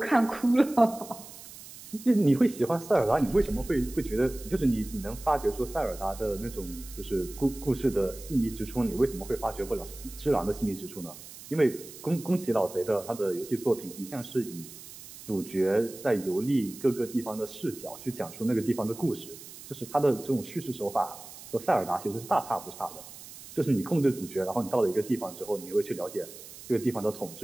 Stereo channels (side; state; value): right; noise; hiss, 16 dB below the sound